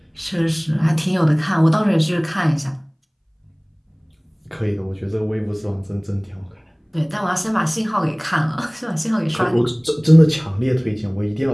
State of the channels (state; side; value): identical; both; correlation 1.00